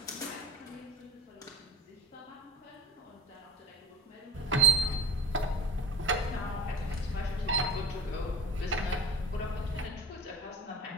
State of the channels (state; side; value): normal; both; correlation 0.35